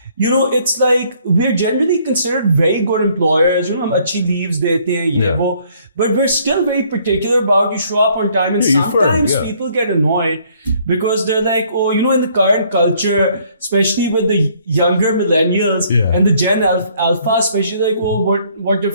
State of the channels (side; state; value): both; inverted; correlation -0.63